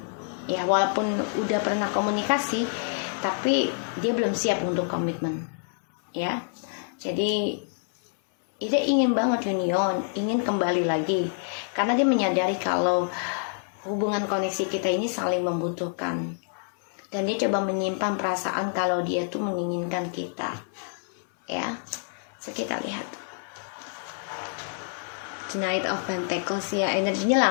Ya, walaupun udah pernah komunikasi, tapi dia belum siap untuk komitmen ya. Jadi dia ingin banget union, ingin kembali lagi, karena dia menyadari kalau hubungan koneksi kita ini saling membutuhkan, dan dia coba menyimpan perasaan kalau dia tuh menginginkan kita ya. So kita lihat The Knight of Pentacles ya, energinya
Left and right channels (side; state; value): right; silent; 60 dB below the other